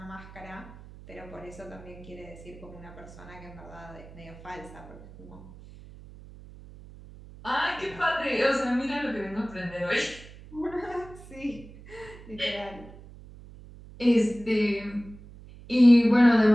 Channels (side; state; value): right; noise; hum, 18 dB below the sound